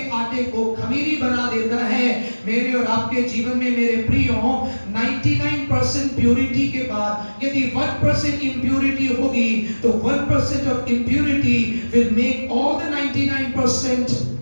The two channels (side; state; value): both; inverted; correlation -1.00